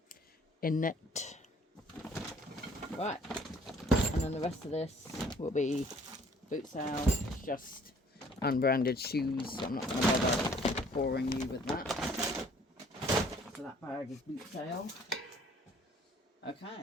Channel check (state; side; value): normal; both; correlation 0.57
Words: In it. Right. And then the rest of this will be boot sale. Just unbranded shoes. So I'm not going to bother boring you with that. So that bag is boot sale.